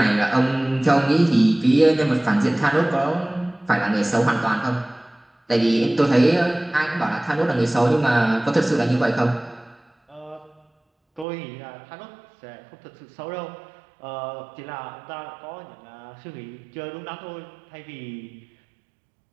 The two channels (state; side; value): drops out; left; at 11.2 s